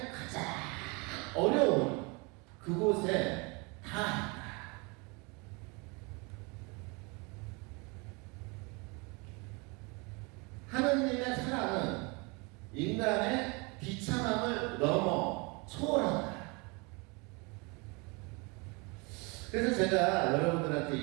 가장 어려운 그곳에 닿았다. 하느님의 사랑은 인간의 비참함을 넘어 초월한다. 그래서 제가 여러분들한테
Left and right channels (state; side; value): quieter; left; 29.3 dB